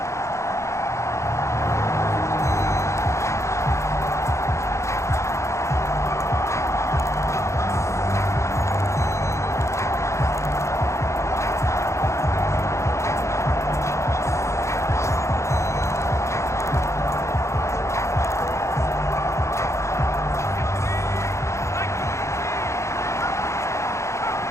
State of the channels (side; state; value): right; late; 0.14 ms